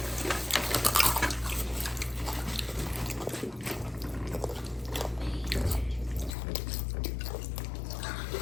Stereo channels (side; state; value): right; drops out; at 6.4 s